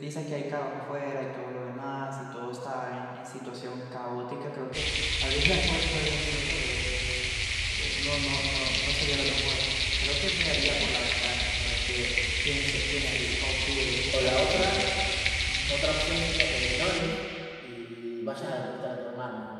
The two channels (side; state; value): both; identical; correlation 1.00